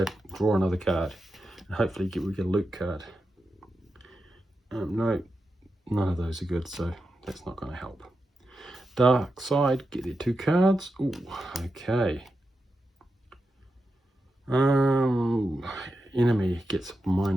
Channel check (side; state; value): both; normal; correlation 0.89